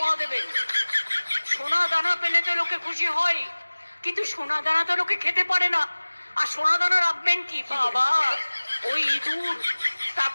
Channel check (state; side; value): inverted; both; correlation -1.00